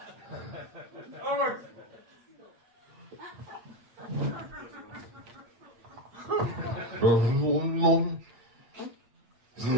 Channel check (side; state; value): left; late; 8.6 ms